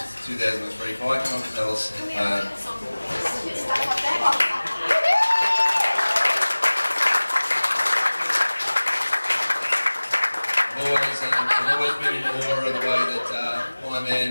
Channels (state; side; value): inverted; both; correlation -1.00